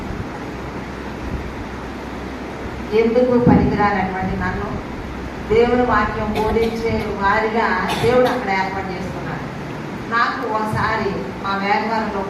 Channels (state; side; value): identical; both; correlation 1.00